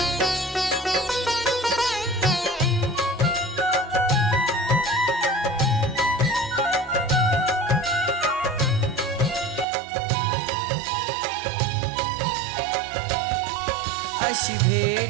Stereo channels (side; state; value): left; drops out; at 9.7 s